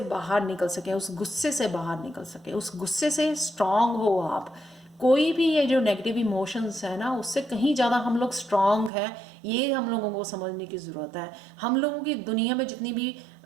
बाहर निकल सकें, उस गुस्से से बाहर निकल सकें, उस गुस्से से स्ट्रांग हो आप। कोई भी ये जो नेगेटिव इमोशंस है ना उससे कहीं ज़्यादा हम लोग स्ट्रांग हैं, ये हम लोगों को समझने की ज़रूरत है। हम लोगों की दुनिया में जितनी भी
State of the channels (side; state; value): left; drops out; at 8.9 s